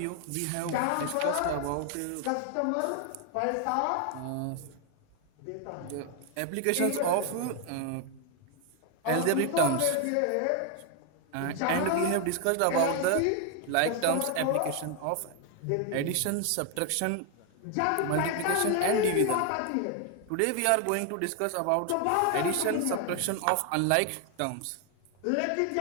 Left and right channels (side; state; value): both; different; correlation 0.00